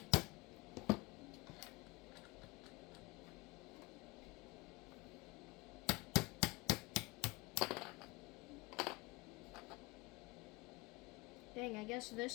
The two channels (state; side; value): quieter; right; 23.5 dB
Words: Dang, I guess